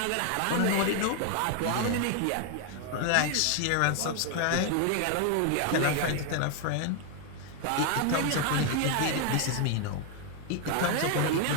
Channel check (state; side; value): different; both; correlation 0.00